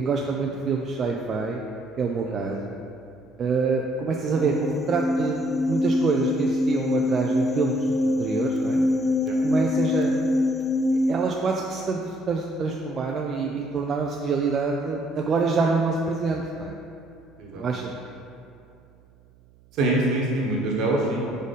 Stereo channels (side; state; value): right; noise; hum, 29 dB below the sound